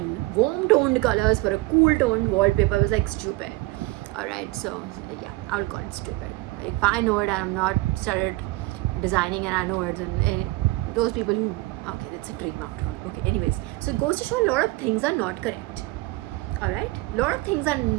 warm toned colors for a cool toned wallpaper was like stupid. Alright, so yeah, I would call it stupid. Like, if I know it and I'm not started designing and I know it, and those people who, okay, that's a dream after all. Okay, anyways, so it goes to show a lot of things are not correct. Alright, a lot of things are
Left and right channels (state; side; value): quieter; left; 20.5 dB